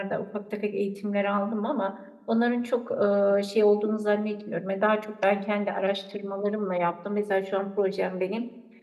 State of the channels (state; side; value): identical; both; correlation 1.00